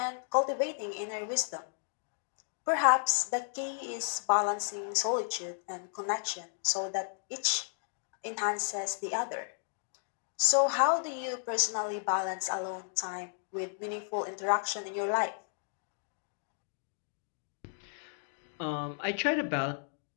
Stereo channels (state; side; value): silent; right; digital silence